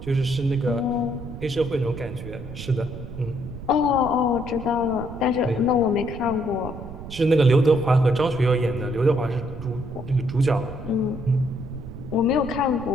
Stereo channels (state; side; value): noise; right; rumble, 12 dB below the sound